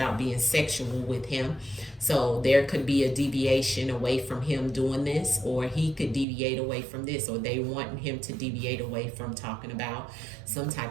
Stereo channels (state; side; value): drops out; left; at 6.2 s